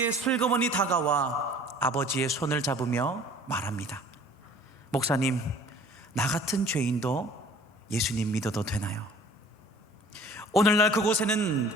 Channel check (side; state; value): both; normal; correlation 0.50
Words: 슬그머니 다가와 아버지의 손을 잡으며 말합니다. 목사님, 나 같은 죄인도 예수님 믿어도 되나요? 오늘날 그곳에는